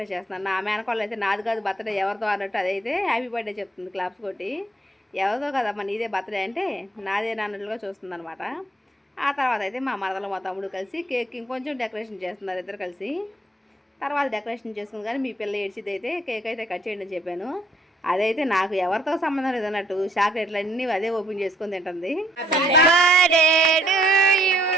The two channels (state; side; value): normal; both; correlation 0.66